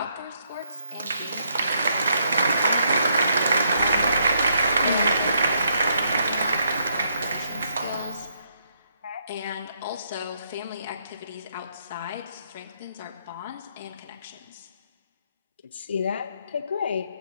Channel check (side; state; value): both; inverted; correlation -0.74